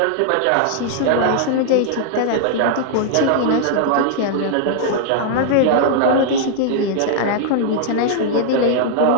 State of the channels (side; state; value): both; different; correlation 0.00